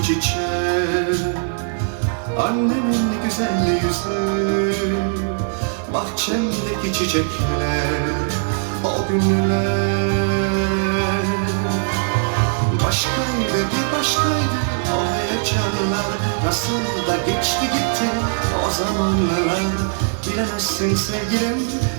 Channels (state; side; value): silent; left; 66 dB below the other